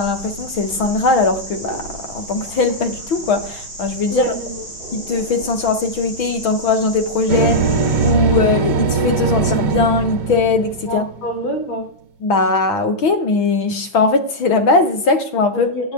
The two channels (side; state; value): right; late; 6.2 ms